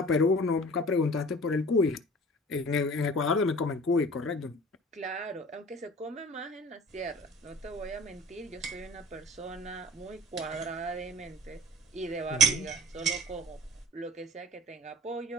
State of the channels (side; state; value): both; normal; correlation 0.45